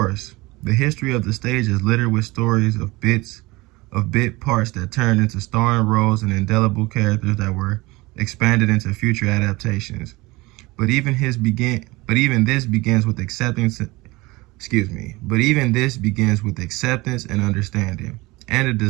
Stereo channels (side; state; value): left; quieter; 22.2 dB